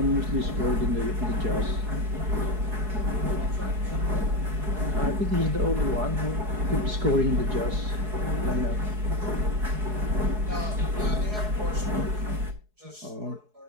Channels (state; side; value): late; left; 4.7 ms